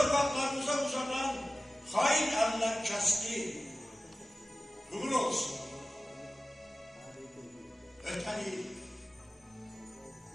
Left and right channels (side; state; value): both; normal; correlation 0.96